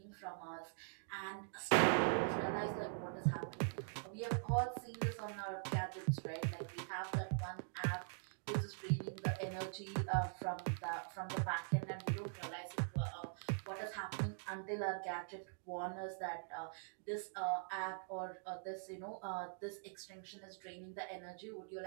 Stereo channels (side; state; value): left; silent; digital silence